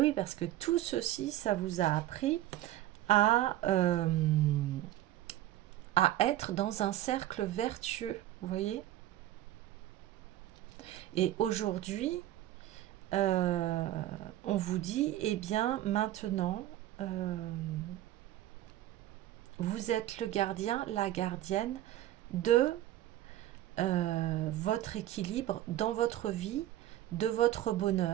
parce que tout ceci, ça vous a appris à être dans un cercle vertueux, vous voyez. Et aujourd'hui, on vous dit, eh bien, maintenant, vous êtes le gardien, la gardienne de votre équilibre dans votre vie, de votre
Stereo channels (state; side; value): quieter; left; 13.9 dB